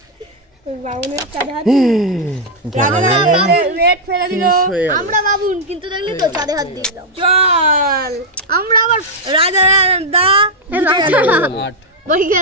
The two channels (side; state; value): both; normal; correlation -0.02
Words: বাউনের চাঁদে হাত রেড ফেলে দিল। হয়ে গেল। আমরা বাবুন কিন্তু দেখলি তো চাঁদে হাত দিলাম। চল আমরা আবার রাজা দা রাজা আট বলি